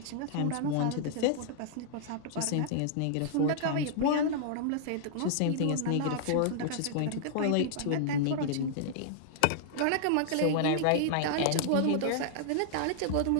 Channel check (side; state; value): both; different; correlation -0.01